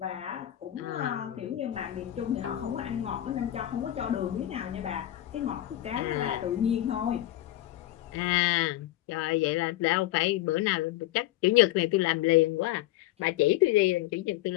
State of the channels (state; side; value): quieter; right; 14.5 dB